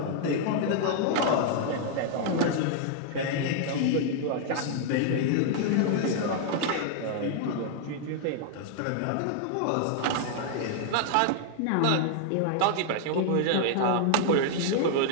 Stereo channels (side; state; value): both; different; correlation 0.00